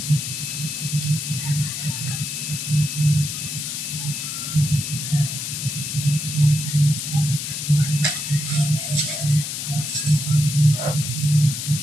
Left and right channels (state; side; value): noise; left; hiss, 4 dB below the sound